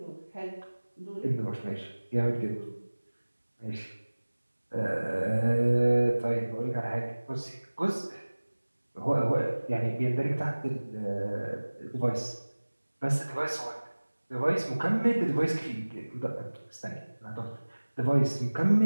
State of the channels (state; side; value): inverted; both; correlation -1.00